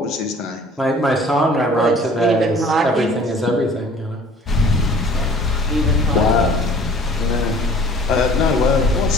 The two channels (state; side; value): normal; both; correlation 0.51